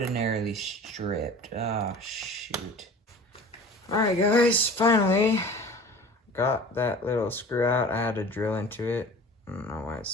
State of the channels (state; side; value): normal; both; correlation 0.41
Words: stripped. Oh, shoot. Alright guys, finally got that little screw out. I had to drill into it. I don't know why